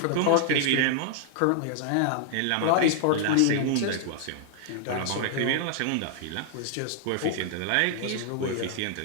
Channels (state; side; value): different; both; correlation 0.00